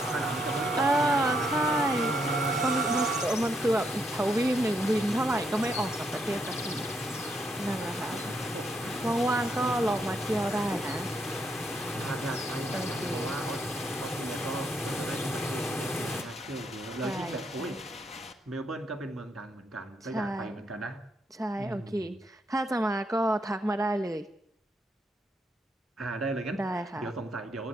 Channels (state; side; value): normal; both; correlation 0.77